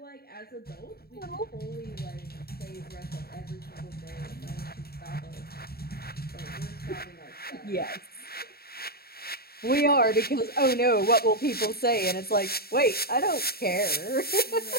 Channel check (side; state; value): right; late; 0.45 ms